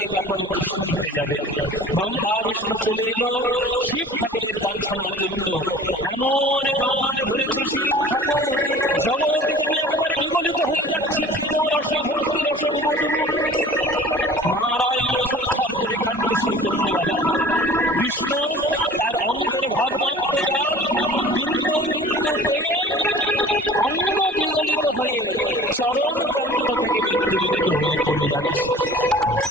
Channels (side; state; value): both; normal; correlation 0.45